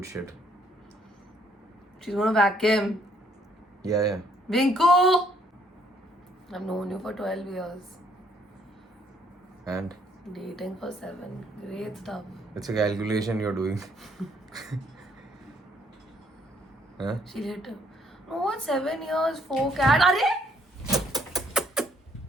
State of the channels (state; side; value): normal; both; correlation 0.67